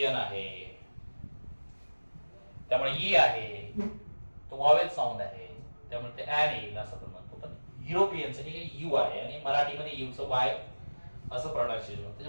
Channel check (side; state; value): both; inverted; correlation -1.00